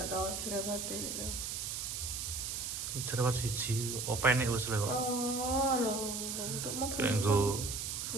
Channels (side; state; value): right; noise; hiss, 4 dB below the sound